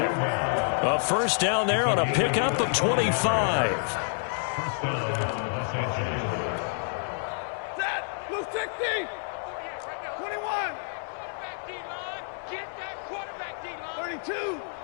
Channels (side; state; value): right; silent; 59 dB below the other